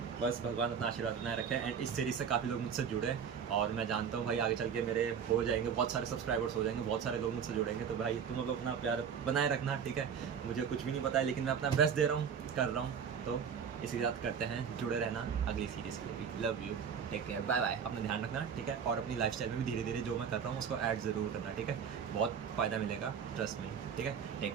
बस भगवान अपना आशीर्वाद बनाए रखें। एंड इस सीरीज़ से काफ़ी लोग मुझसे जुड़े, और मैं जानता हूँ भाई आगे चल के मेरे हो जाएंगे, बहुत सारे सब्सक्राइबर्स हो जाएंगे, बहुत सारे लोग मुझसे जुड़ेंगे। तो भाई तुम लोग अपना प्यार बनाए रखना, ठीक है। मुझे कुछ भी नहीं पता है, लेकिन मैं अपना बेस्ट दे रहा हूँ, कर रहा हूँ। तो इसी के साथ करते हैं, जुड़े रहना अगली सीरीज़ के लिए भी। Love you, take care, bye bye. अपना ध्यान रखना, ठीक है। और अपनी लाइफस्टाइल में भी धीरे धीरे जो मैं कर रहा हूँ उसको ऐड ज़रूर करना, ठीक है। बहुत फ़ायदा मिलेगा, ट्रस्ट में, ठीक है।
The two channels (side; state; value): left; quieter; 7.2 dB